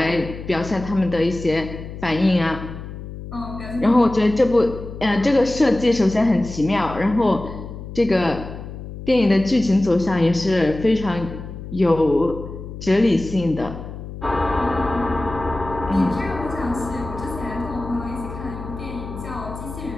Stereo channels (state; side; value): noise; left; hum, 11 dB below the sound